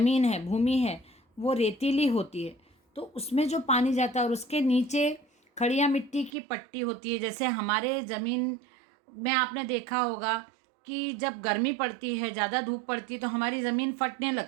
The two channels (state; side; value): drops out; left; at 6.3 s